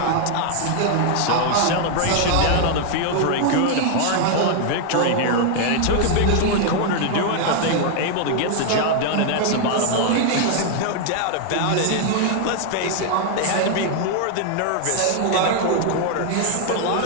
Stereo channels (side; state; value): both; different; correlation 0.00